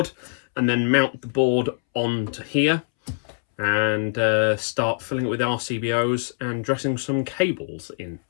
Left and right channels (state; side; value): silent; right; 63 dB below the other